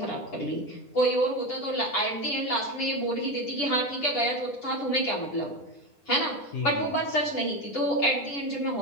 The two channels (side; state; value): right; late; 9.8 ms